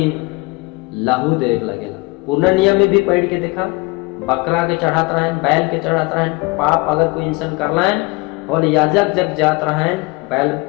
लहू देख लगेला। पूर्ण नियम में भी पढ़ के देखा, बकरा के चढ़ात रहें, बैल के चढ़ात रहें। पाप अगर कोई इंसान कर लाएं और याजक जग जात रहें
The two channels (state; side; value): quieter; right; 25.4 dB